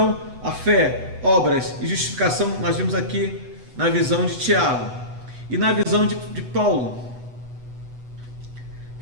a fé, obras e justificação, nós vimos aqui na visão de Tiago. E na visão de Paulo.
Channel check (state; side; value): late; left; 8.1 ms